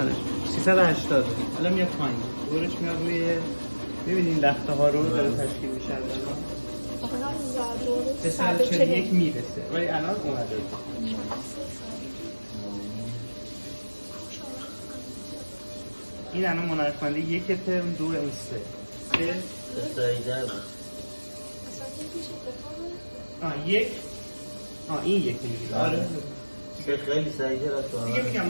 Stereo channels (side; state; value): both; inverted; correlation -1.00